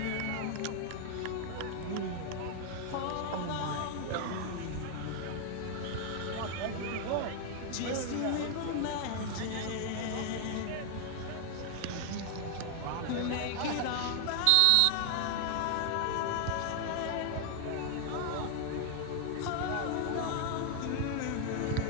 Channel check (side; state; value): both; different; correlation 0.00